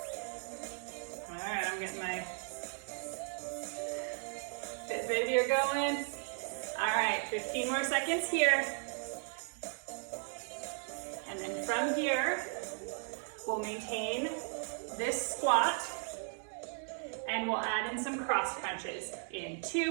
All right, I'm getting my fit video going. All right, 15 more seconds here. And then from here, we'll maintain this squat. And we'll add in some cross crunches in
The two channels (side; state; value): left; silent; 54 dB below the other